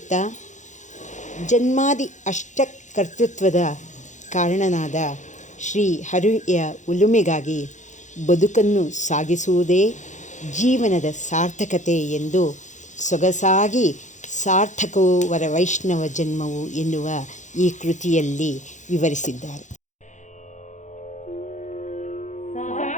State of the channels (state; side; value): late; right; 0.35 ms